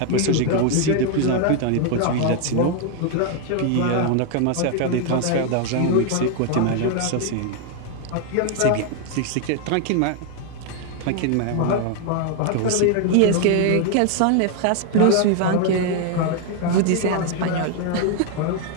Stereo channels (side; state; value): both; different; correlation 0.00